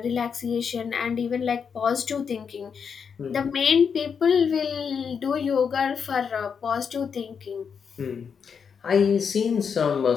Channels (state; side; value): quieter; right; 6.5 dB